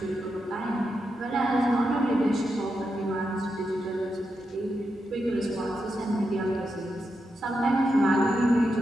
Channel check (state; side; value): normal; both; correlation 0.86